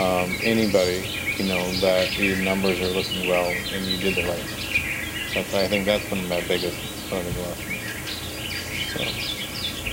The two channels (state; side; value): identical; both; correlation 1.00